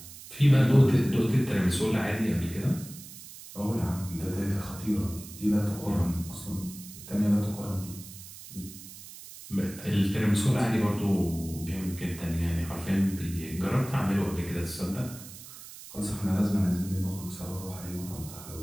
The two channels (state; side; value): noise; right; hiss, 15 dB below the sound